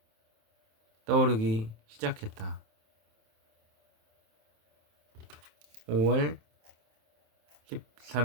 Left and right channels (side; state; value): left; late; 27 ms